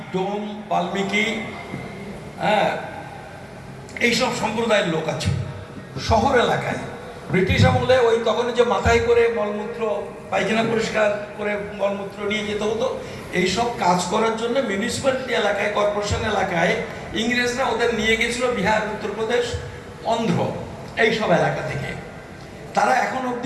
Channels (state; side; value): identical; both; correlation 1.00